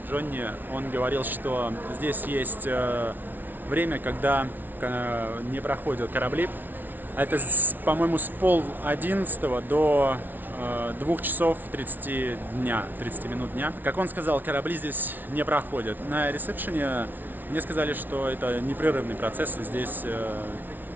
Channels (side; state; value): left; late; 0.086 ms